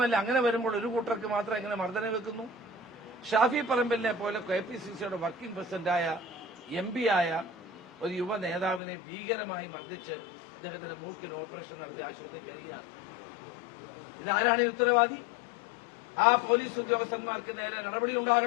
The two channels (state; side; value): drops out; right; at 8.8 s